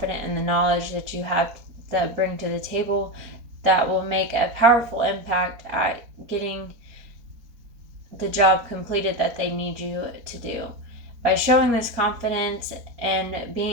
in the knowledge that you have that bring to the table, that will make a powerful impact at getting the job completed that they need you to do. By showing this confidence and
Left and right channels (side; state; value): left; late; 4.4 ms